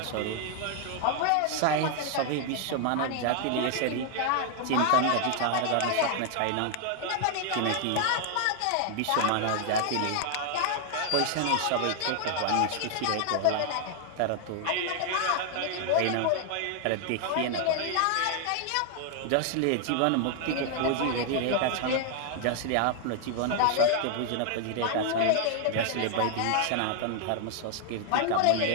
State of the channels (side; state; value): both; different; correlation 0.00